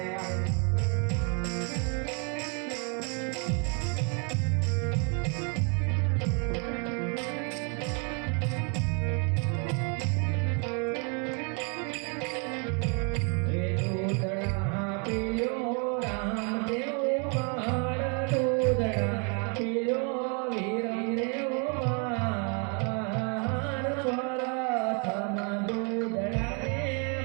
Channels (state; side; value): quieter; left; 37.1 dB